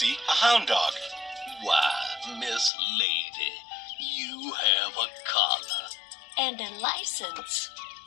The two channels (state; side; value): drops out; right; at 2.7 s